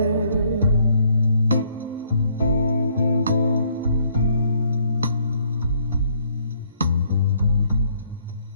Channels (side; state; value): both; inverted; correlation -0.67